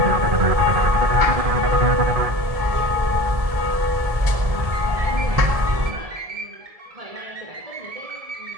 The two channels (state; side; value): late; left; 1.7 ms